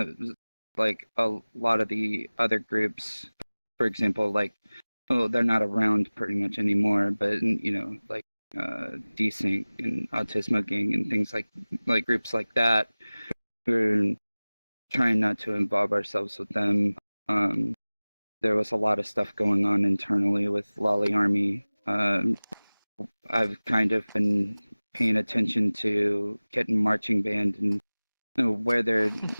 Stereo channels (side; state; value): both; inverted; correlation -0.99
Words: like a lot of the other groups, for example, like they're not around pretty much anymore, but like Desync and Autismo Gang and things like groups like that, who are trying not to involve ourselves with them. There was a lot of stuff going on internally with Lolly Army. I've kind of been paying attention to Kitten Marching Band and where their